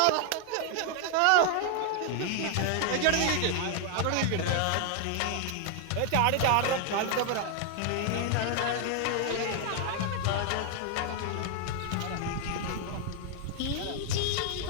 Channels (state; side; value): different; both; correlation 0.00